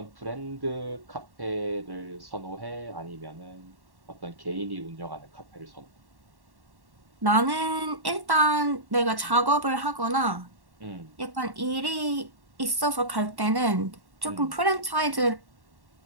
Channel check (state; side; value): late; left; 1.1 ms